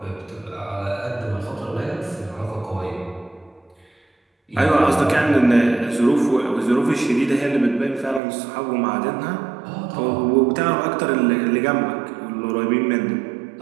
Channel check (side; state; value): left; drops out; at 8.2 s